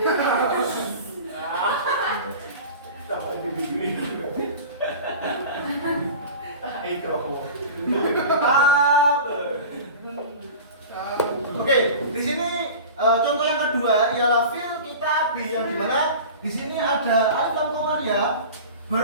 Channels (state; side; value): inverted; both; correlation -0.36